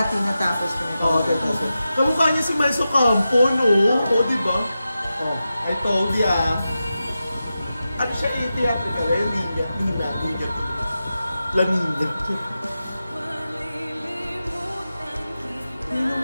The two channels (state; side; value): inverted; both; correlation -0.91